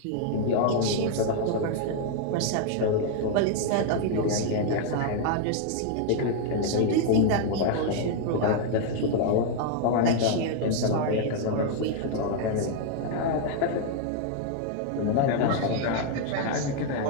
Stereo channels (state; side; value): different; both; correlation 0.00